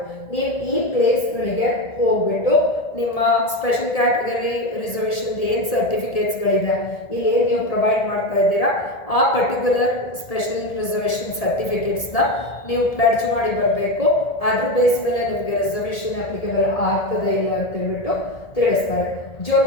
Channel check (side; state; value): right; late; 1.7 ms